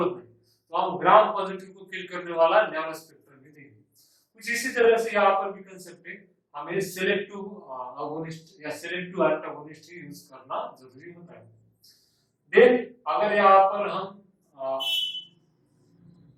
नहीं, तो हम ग्राम पॉजिटिव को किल करने वाला नैरो स्पेक्ट्रम भी देंगे। कुछ इसी तरह से यहाँ पर भी कंसेप्ट है, हमें सिलेक्टिव अगोनिस्ट या सिलेक्टिव एंटागोनिस्ट ही यूज करना जरूरी होता है। देन अगर यहाँ पर हम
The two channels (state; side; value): identical; both; correlation 1.00